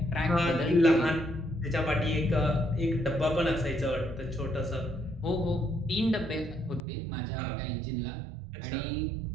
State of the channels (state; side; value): drops out; left; at 6.8 s